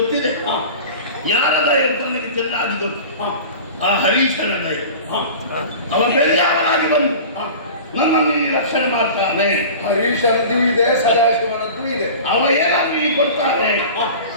ಯಾರ ದಯ ಅಂತ ನನಗೆ ಚೆನ್ನಾಗಿ ಗೊತ್ತು. ಆ ಹರೀಶನ ದಯ. ಅವ ಬೆಳ್ಳಾಗಿ ಬಂದು ನನ್ನನ್ನು ಇಲ್ಲಿ ರಕ್ಷಣೆ ಮಾಡ್ತಾನೆ. ಹರೀಶನದ್ದು ಇದೆ, ಸದಾಶಿವನದ್ದು ಇದೆ. ಅವ ಏನಾದ್ರು ಇಲ್ಲಿ ಕೊಡ್ತಾನೆ,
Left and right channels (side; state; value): both; inverted; correlation -0.37